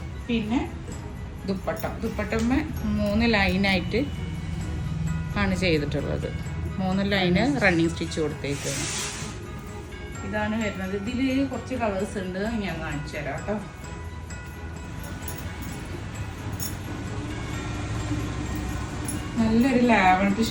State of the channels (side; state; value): both; identical; correlation 1.00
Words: പിന്നെ ദുപ്പട്ടമ്മ 3 ലൈനായിട്ട് ആണ് ചെയ്തിട്ടുള്ളത്. 3 ലൈന് റണ്ണിങ് സ്റ്റിച്ച് കൊടുത്തേക്കാണ്. ഇതാണ് വരുന്നത്. ഇതിൽ കുറച്ച് കളേഴ്സ് ഉണ്ട്, ഞാൻ കാണിച്ചു തരാം കേട്ടോ. നല്ലൊരു ലാവൻഡർ